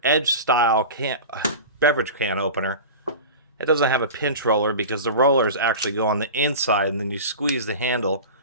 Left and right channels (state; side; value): inverted; both; correlation -0.31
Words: style beverage can opener. It doesn't have a pinch roller because the rollers actually go on the inside and then you squeeze the handle.